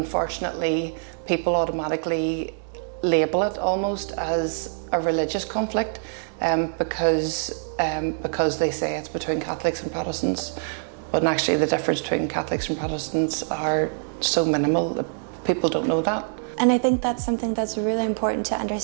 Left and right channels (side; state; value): left; silent; digital silence